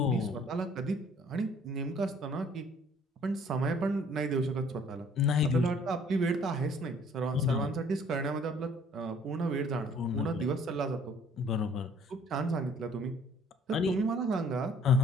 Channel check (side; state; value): both; normal; correlation 0.57